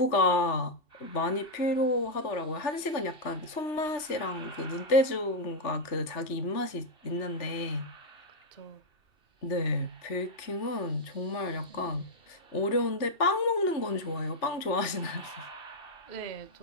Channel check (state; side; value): late; right; 3.3 ms